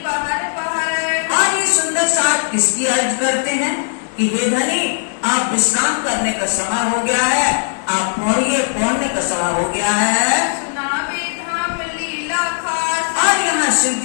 पहर पहर, और ये सुंदर साथ किसकी अर्ज करते हैं कि हे धनी, आप विश्राम करने का समय हो गया है, आप पढ़ने का समय हो गया है। सुनावे धाम लीला खास, और यहाँ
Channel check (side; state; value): right; silent; digital silence